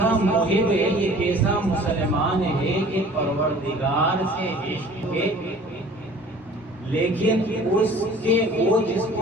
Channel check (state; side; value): normal; both; correlation 0.48